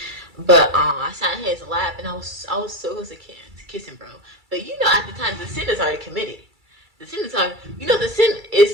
But I sat in his lap, and I was so close to kiss him, bro. But you know, at the time, the sin is already committed. The sin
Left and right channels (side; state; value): left; late; 2.3 ms